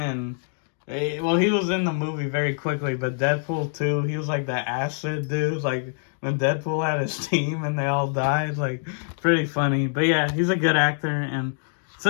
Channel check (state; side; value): silent; right; 62 dB below the other